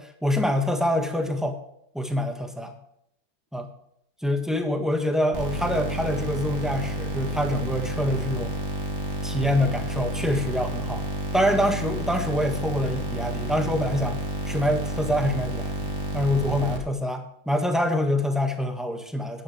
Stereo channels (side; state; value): both; normal; correlation 0.59